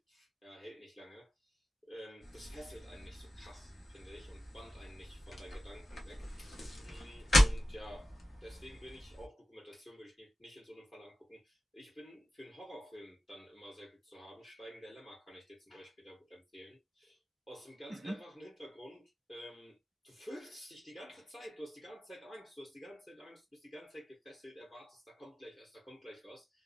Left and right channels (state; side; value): normal; both; correlation 0.93